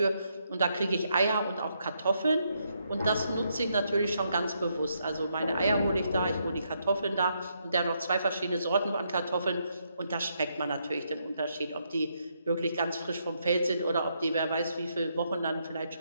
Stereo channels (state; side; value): inverted; both; correlation -0.77